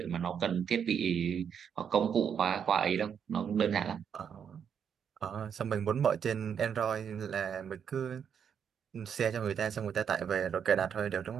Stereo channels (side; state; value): left; quieter; 7.7 dB